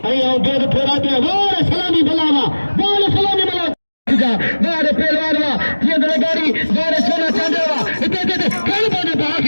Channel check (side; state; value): both; inverted; correlation -1.00